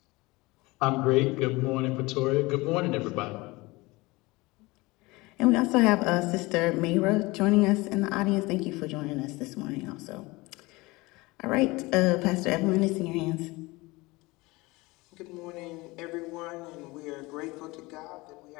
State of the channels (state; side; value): quieter; right; 22.5 dB